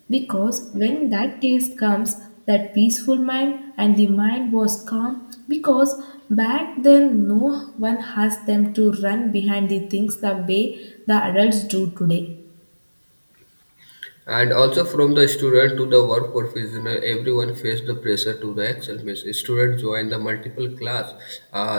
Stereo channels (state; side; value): inverted; both; correlation -1.00